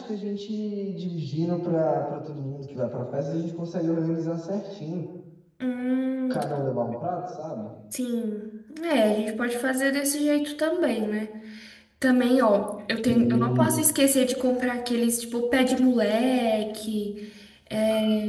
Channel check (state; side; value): identical; both; correlation 1.00